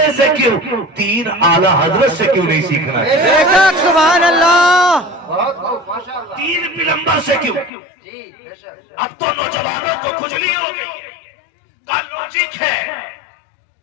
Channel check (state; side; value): drops out; right; at 7.7 s